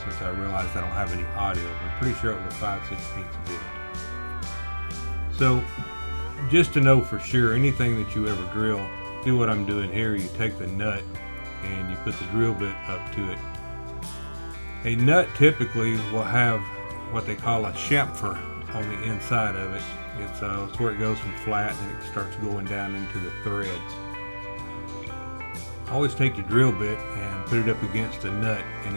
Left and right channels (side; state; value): both; inverted; correlation -1.00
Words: since I realized I don't have any audio, but I'm pretty sure it was a 5/16 bit. So just to know for sure, anything that you ever drill, do what I'm doing here. You take the nut and you put the drill bit up to it. A nut typically will have what they call a chamfer on the inside of it. It's where it goes from flat and it starts going down into the threads. Always take the drill bit and put it up against the nut, and